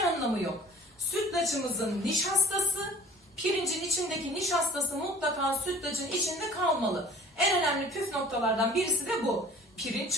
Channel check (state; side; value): normal; both; correlation 0.47